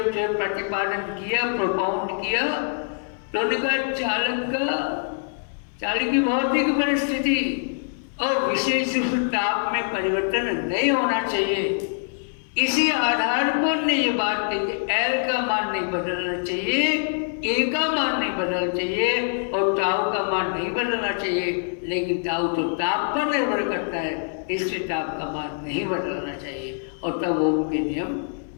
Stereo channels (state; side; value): silent; right; digital silence